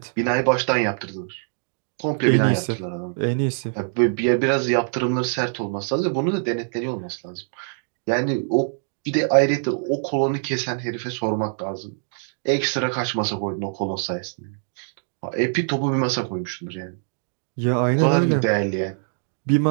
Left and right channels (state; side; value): silent; left; digital silence